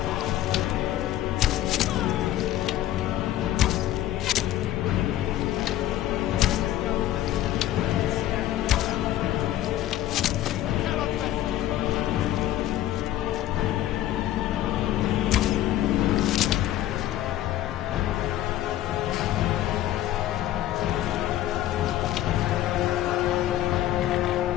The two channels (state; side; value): quieter; right; 13.4 dB